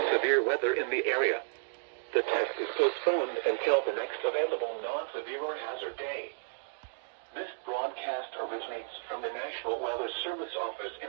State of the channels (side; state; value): left; silent; digital silence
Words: severe weather in the area, the test is postponed until the next available non-severe or hazard day. This broadcast originates from the National Weather Service Office